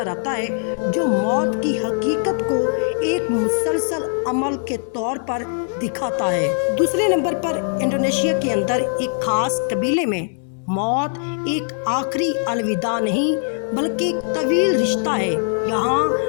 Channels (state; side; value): silent; right; 65 dB below the other